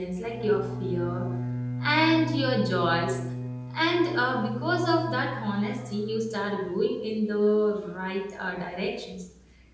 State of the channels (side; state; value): both; identical; correlation 1.00